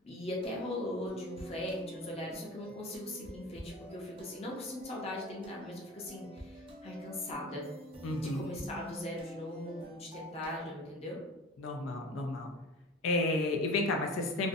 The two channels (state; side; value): normal; both; correlation 0.35